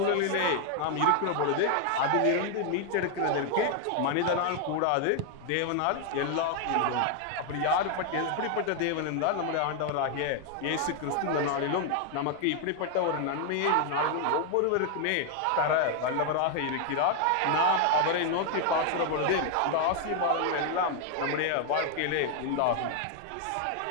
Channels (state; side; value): different; both; correlation 0.00